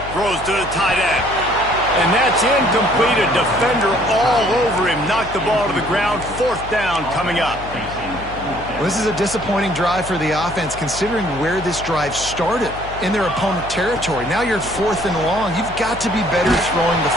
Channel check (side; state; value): left; noise; hum, 13 dB below the sound